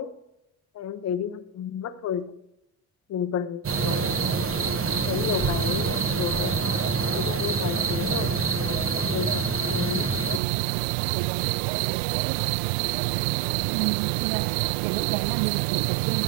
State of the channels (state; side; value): drops out; left; at 10.4 s